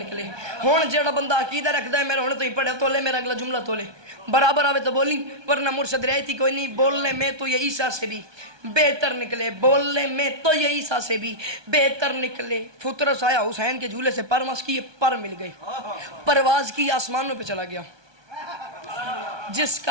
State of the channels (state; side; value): late; left; 1.2 ms